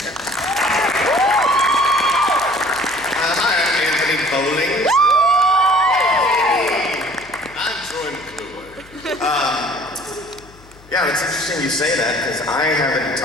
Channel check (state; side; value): noise; left; hum, 24 dB below the sound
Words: Hi, I'm Anthony Bowling. I'm Troy McClure. Yeah, it's interesting you say that, because I haven't